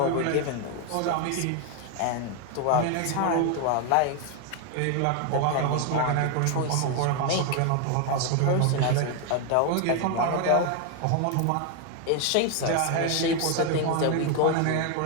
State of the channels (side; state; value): both; different; correlation 0.01